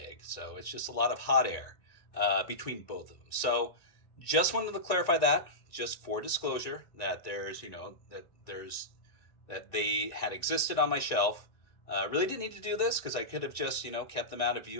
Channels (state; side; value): late; right; 1.9 ms